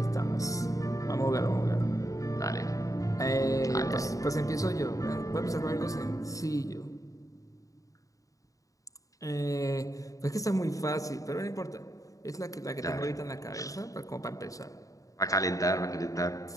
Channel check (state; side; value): late; right; 0.16 ms